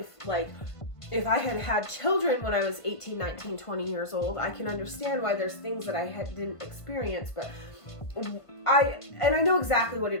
Like, if I had had children when I was 18, 19, 20 years old, I can understand why there's things that I didn't experience, but I know exactly what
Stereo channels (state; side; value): late; right; 1.5 ms